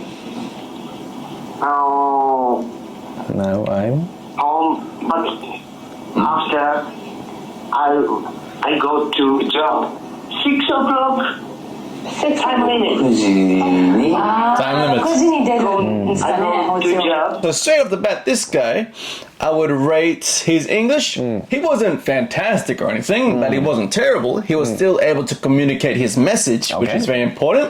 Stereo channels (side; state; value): both; identical; correlation 1.00